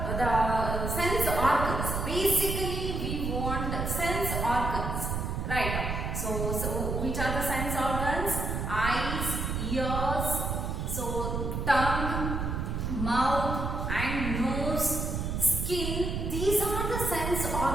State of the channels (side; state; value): right; noise; rumble, 2 dB below the sound